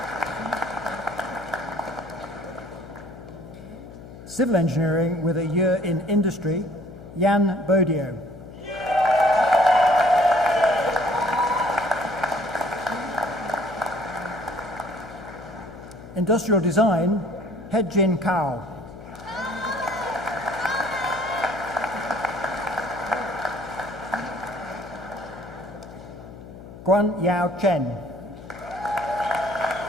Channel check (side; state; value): left; noise; hum, 15 dB below the sound